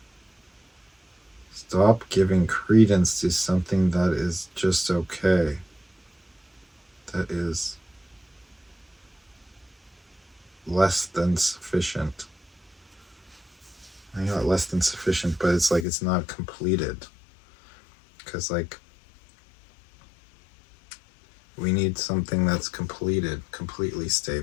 stop giving credence to something that is just okay, that is less than sufficient. I got less than sufficient, but it's like it's not completed. Because, like, we need something that's completed, completely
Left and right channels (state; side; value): drops out; right; at 15.9 s